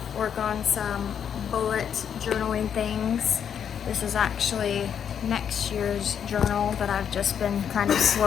work on some bullet journaling things. This is actually next year's journal that I've just been kind of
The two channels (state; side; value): quieter; right; 8.2 dB